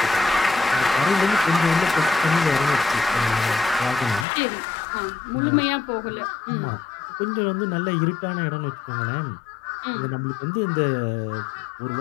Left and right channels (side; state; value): right; drops out; at 4.2 s